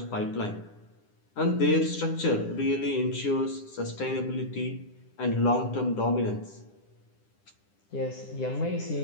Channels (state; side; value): late; right; 10 ms